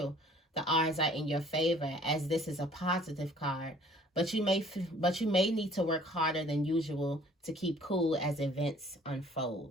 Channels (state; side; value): normal; both; correlation 0.55